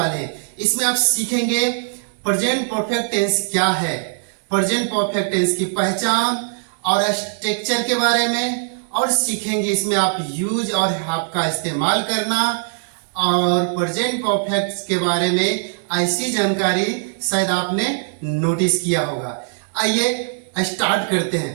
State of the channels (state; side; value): silent; left; digital silence